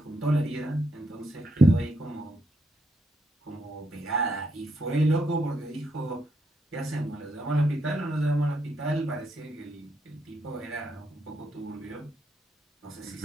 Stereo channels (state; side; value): normal; both; correlation 0.77